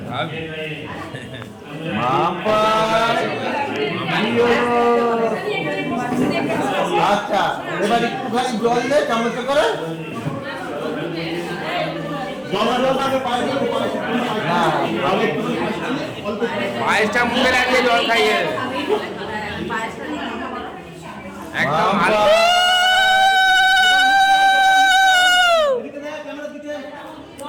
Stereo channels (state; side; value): identical; both; correlation 1.00